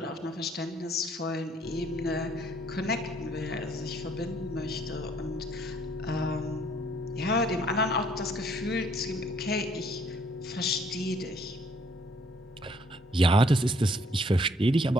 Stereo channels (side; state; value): both; normal; correlation 0.64